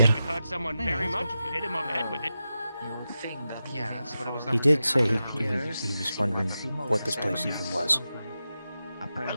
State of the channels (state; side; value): inverted; both; correlation -0.91